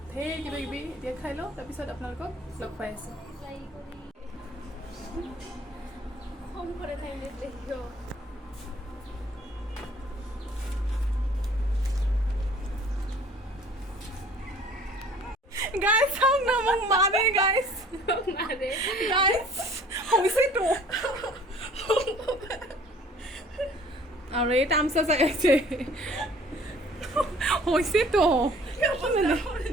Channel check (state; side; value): normal; both; correlation 0.53